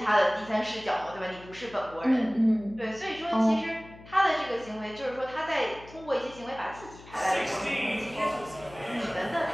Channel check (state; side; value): noise; left; hum, 19 dB below the sound